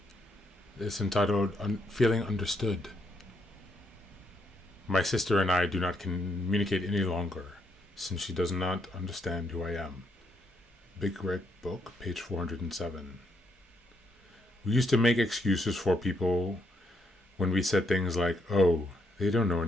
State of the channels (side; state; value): both; normal; correlation 0.76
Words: It's entitled Feeling Understood. My sister and I do not communicate any longer, since she does not understand who I am. Big Red Book, page 407. We used to make excuses for people when we said things like, "Oh, they don't know